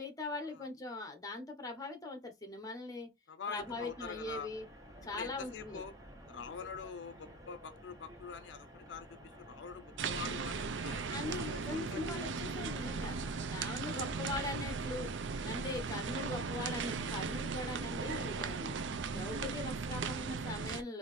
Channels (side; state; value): both; normal; correlation 0.30